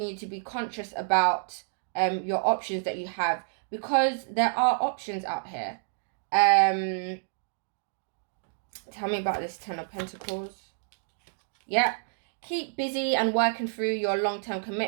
you to be conscious about your options that you have, because there are options out here. Tell me about this Ten of Pentacles. Yeah, keep busy and working through your long-term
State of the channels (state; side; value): silent; left; digital silence